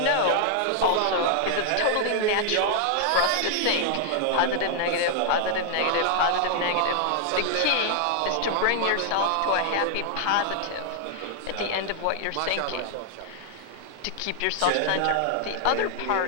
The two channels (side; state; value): both; different; correlation 0.00